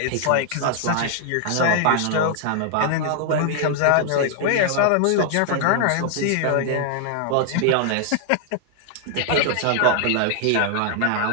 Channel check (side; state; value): both; different; correlation 0.00